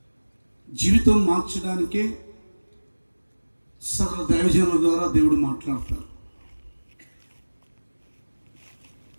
జీవితం మార్చడానికే సకల దైవజనుల ద్వారా దేవుడు మాట్లాడతారు.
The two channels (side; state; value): both; inverted; correlation -1.00